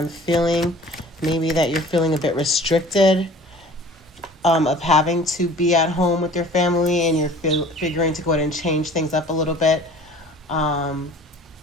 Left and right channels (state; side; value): normal; both; correlation 0.47